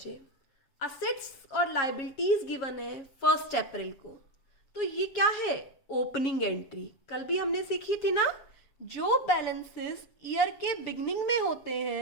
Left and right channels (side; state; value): right; late; 7.1 ms